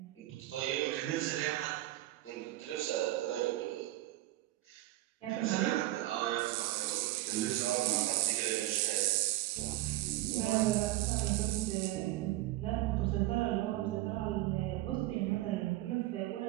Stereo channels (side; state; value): left; quieter; 16.4 dB